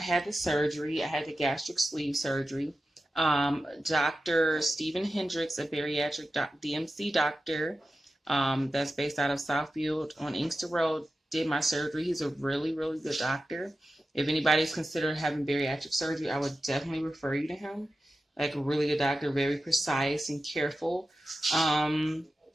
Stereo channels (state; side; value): normal; both; correlation 0.92